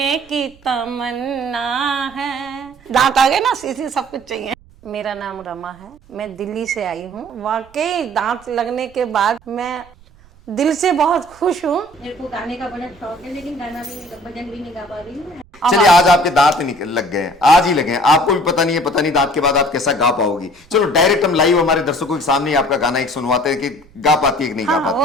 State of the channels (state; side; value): noise; right; rumble, 27 dB below the sound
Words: की तमन्ना है। दांत आ गए ना, सीधी सब कुछ चाहिए। मेरा नाम रमा है, मैं दिल्ली से आई हूँ। वाकई दांत लगने के बाद मैं दिल से बहुत खुश हूँ। मेरे को गाने का बड़ा शौक है, लेकिन गाना भी नहीं, भजन भी नहीं गा पा रही हूँ। चलिए, आज आपके दांत लग गए हैं, आज ही लगे हैं, आपको भी पता नहीं है, पता नहीं दांत के बाद आप कैसा गा पाओगी। चलो डायरेक्ट हम लाइव हमारे दर्शकों के सामने आपका गाना एक सुनवाते हैं कि गा पाती है कि नहीं गा पाती।